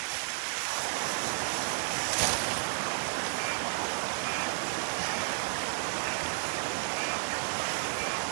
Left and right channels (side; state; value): left; silent; 56 dB below the other